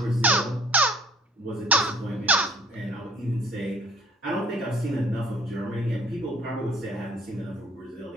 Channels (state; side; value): normal; both; correlation 0.55